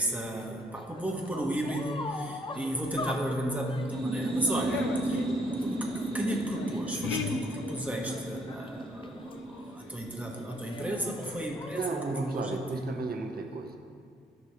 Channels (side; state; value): both; normal; correlation 0.67